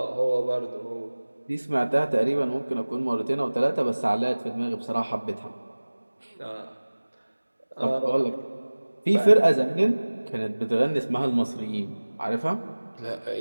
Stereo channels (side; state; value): both; inverted; correlation -1.00